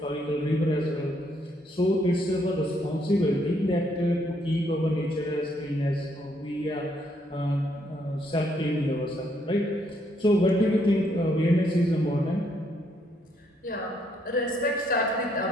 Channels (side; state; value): both; normal; correlation 0.72